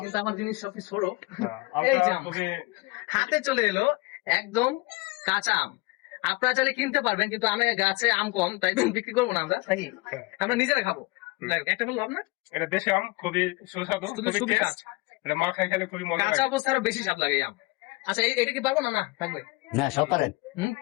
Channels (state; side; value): quieter; right; 24.6 dB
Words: কিন্তু আমার জিনিস সবকিছু ছোট। আমটা এই যে আম খুবই হাতে চলে এলো, একদম কাঁচা আম। আপনারা চাইলে কিনতে পারবেন, কিন্তু আমি গাছে আম কম, তাই বিক্রি করবো না আমরা, তাই আমরা নিজেরা খাবো। যাই হোক, একটা বলবো আপনার, এটা দেশি আম, খুবই সুস্বাদু, খুবই খুবই কাঁচা। টেস্ট। এটা মা খাই খেলে খুবই মজা কাঁচা লাগে। অবস্থা আরো বেশি স্বাদ লাগে এই আম। আচ্ছা, এটা কি পারবো না? না, থাকবে। না সব পারেন।